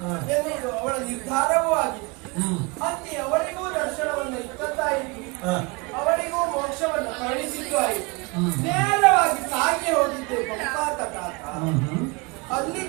ಎನ್ನುವುದು ಅವಳ ನಿರ್ಧಾರವೂ ಆಗಿದೆ. ಅಲ್ಲಿ ಅವಳಿಗೂ ದರ್ಶನವನ್ನು ಇತ್ತದ್ದಾಯಿತು, ಅವಳಿಗೂ ಮೋಕ್ಷವನ್ನು ಕರುಣಿಸಿದ್ದು ಆಯಿತು. ನೇರವಾಗಿ ಸಾಗಿ ಹೋಗಿದ್ದೆ ಪಂಪಾತಟಾತ. ಅಲ್ಲಿ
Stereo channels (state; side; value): quieter; left; 27.9 dB